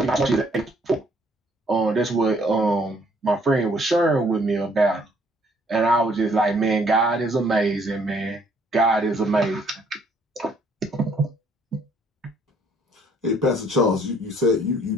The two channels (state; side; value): normal; both; correlation 0.64